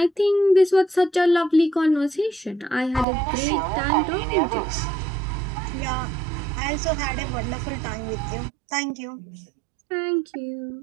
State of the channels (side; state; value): left; drops out; at 3.1 s